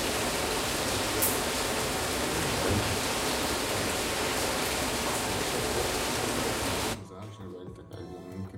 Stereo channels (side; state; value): both; identical; correlation 1.00